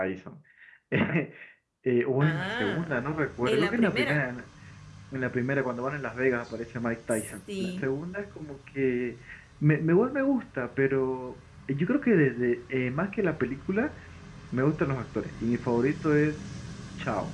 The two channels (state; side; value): identical; both; correlation 1.00